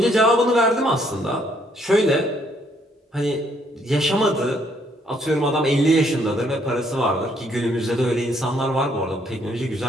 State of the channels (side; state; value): both; normal; correlation 0.68